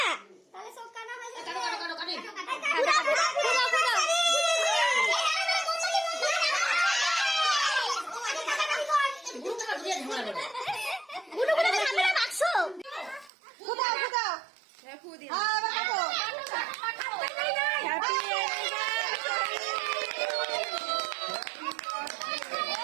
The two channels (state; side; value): drops out; left; at 13.3 s